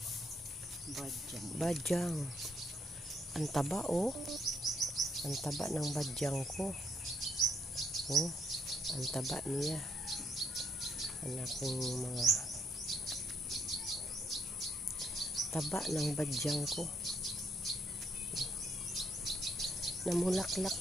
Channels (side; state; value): both; normal; correlation 0.72